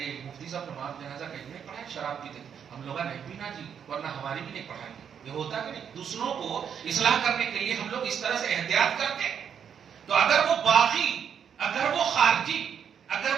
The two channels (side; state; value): left; quieter; 7.9 dB